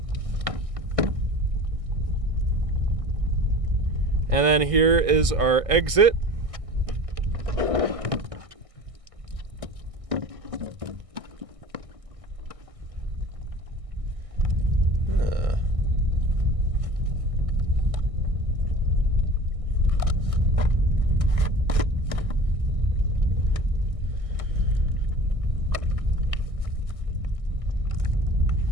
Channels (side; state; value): left; late; 1.6 ms